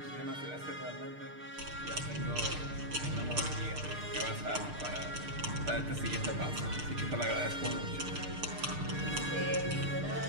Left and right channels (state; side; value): late; left; 6.7 ms